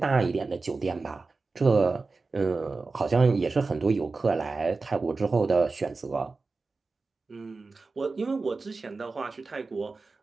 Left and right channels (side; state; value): left; quieter; 3.9 dB